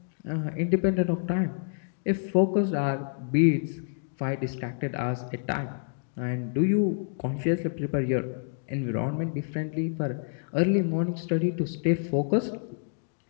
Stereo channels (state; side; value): silent; right; digital silence